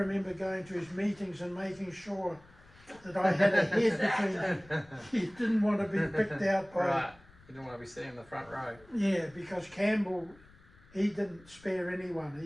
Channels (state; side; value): noise; left; rumble, 26 dB below the sound